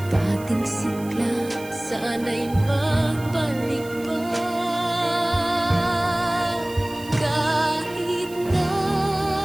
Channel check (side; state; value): right; noise; hiss, 19 dB below the sound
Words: Dating sigla, sana'y magbalik pa. Kahit na